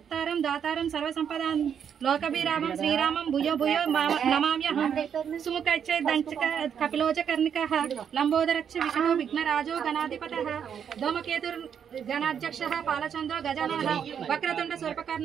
దాతారం సర్వసంపదాం లోకభిరామం శ్రీరామం భూయో భూయో నమామ్యహం సుముఖైచ్చే దంచక కపిలోచ కర్ణికః లంబోదరచ్చ విష్ణు విఘ్నరాజో గణాధిపతః ధూమకేతుర్ గణాధ్యక్షః పాలచంద్రో గజాననః వక్రతుండ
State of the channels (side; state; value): left; quieter; 8.0 dB